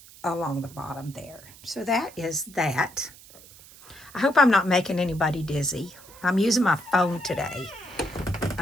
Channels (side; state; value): right; noise; hiss, 21 dB below the sound